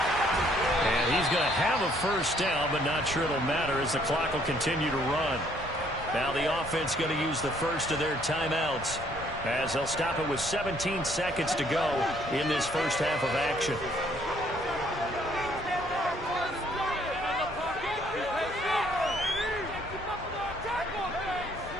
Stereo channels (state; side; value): normal; both; correlation 0.64